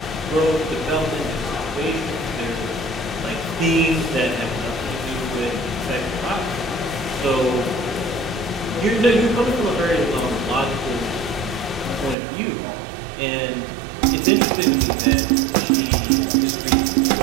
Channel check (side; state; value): left; drops out; at 12.2 s